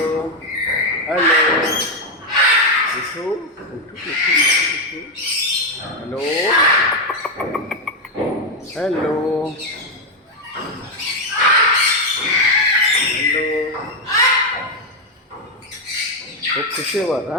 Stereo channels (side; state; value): both; normal; correlation 0.04